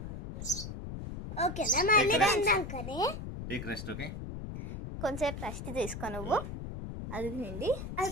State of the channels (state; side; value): noise; left; rumble, 7 dB below the sound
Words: ఓకేనా మళ్ళీ తిందాం కానీ. Take rest. ఓకే కొంచెంసేపు రెస్ట్ తీసుకో నువ్వు. అది తిండి అది